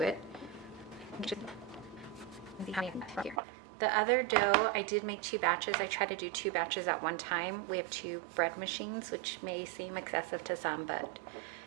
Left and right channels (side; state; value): left; drops out; at 3.4 s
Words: it. The other dough, I did make 2 batches. I try to do 2 batches at one time. We have 2 bread machines, which may seem excessive to some, but